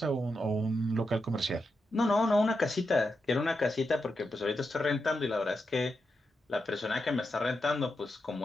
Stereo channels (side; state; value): both; normal; correlation 0.86